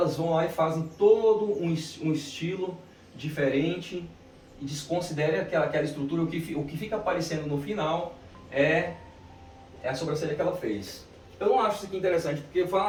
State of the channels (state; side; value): identical; both; correlation 1.00